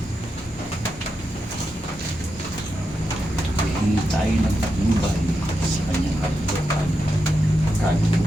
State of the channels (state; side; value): normal; both; correlation 0.87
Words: Hihingi tayo ng patnubay sa kanyang kalupan,